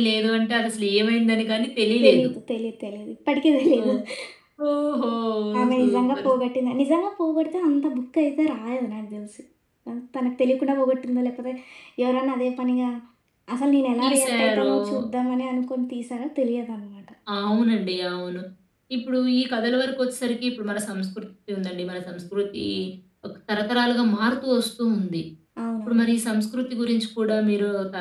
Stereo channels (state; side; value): identical; both; correlation 1.00